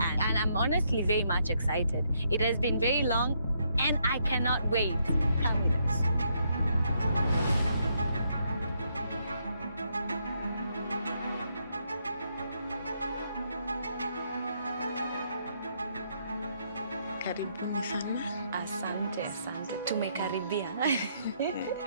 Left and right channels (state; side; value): inverted; both; correlation -0.75